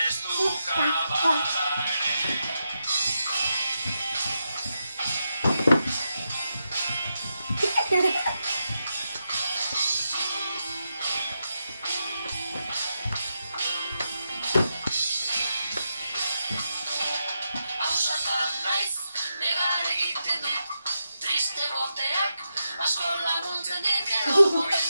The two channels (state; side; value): inverted; both; correlation -0.86